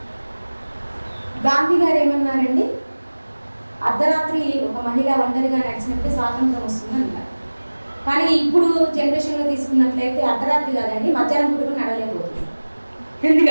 గాంధీ గారు ఏమన్నారండి, అర్ధరాత్రి ఒక మహిళ ఒంటరిగా నడిచినప్పుడు స్వాతంత్రం వస్తుంది అంటారు. కానీ ఇప్పుడు జనరేషన్లో తీసుకున్నట్లయితే అర్ధరాత్రి కాదండి, మధ్యాహ్నం పూట కూడా నడవలేకపోతుంది.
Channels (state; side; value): inverted; both; correlation -1.00